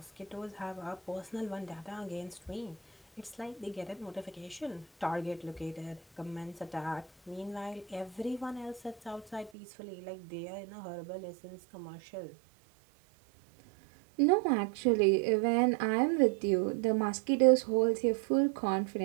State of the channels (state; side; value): drops out; left; at 9.5 s